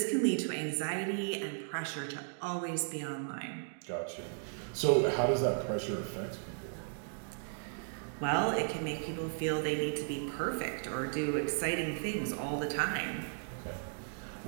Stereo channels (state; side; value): silent; left; digital silence